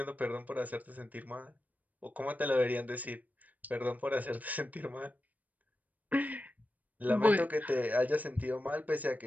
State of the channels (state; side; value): late; left; 0.077 ms